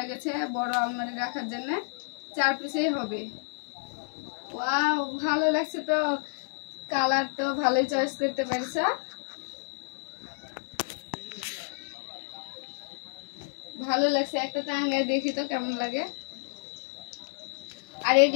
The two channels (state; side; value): silent; right; digital silence